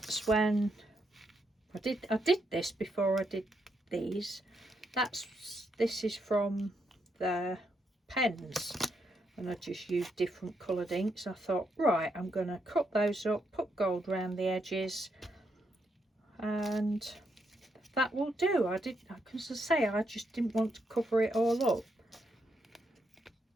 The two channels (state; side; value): normal; both; correlation 0.79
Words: when I did this before I did these. This is from the pens, and I just used different coloured inks. I thought, right, I'm going to cut those up, put gold around the edges, and that will do. Because I say, I just didn't want to cover it all up.